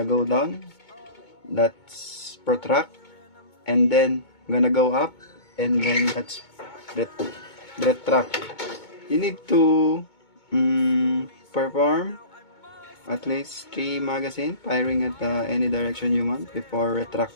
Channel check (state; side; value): late; right; 2.2 ms